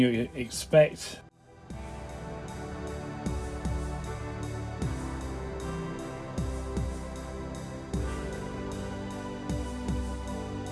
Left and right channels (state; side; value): identical; both; correlation 1.00